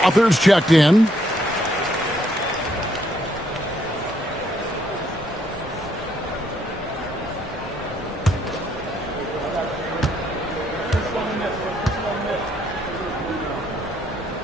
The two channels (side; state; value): both; normal; correlation 0.71